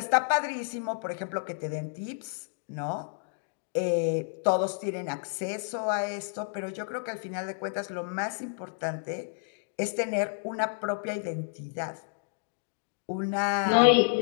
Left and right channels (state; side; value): silent; right; digital silence